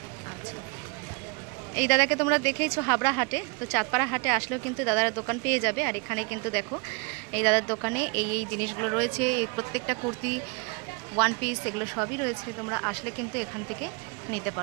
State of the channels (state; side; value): quieter; left; 32.2 dB